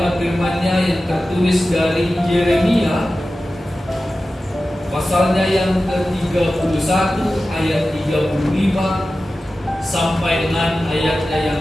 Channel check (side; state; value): both; normal; correlation 0.94